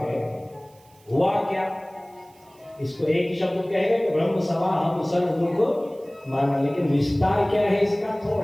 हुआ क्या, इसको एक ही शब्द कहेगा कि ब्रह्म सभा हम सर्व दुख माना, लेकिन विस्तार क्या है इसका,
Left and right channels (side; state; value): right; noise; hiss, 30 dB below the sound